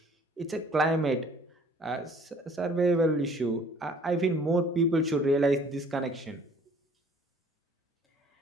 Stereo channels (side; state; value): both; normal; correlation 0.55